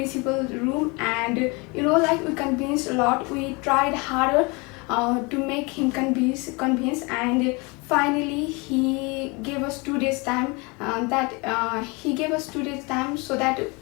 room. And like we convinced a lot, we tried harder to make him convince. And finally he gave us 2 days time, he gave us 2 days time so that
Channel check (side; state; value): right; quieter; 28.3 dB